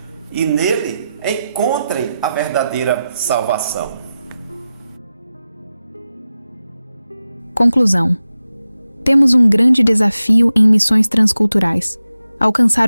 e nele encontrem a verdadeira salvação. Conclusão. Temos um grande desafio em missões transculturais:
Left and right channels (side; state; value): both; inverted; correlation -0.92